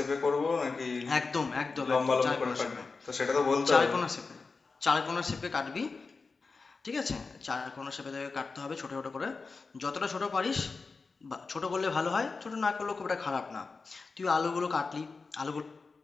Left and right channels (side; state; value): right; quieter; 4.3 dB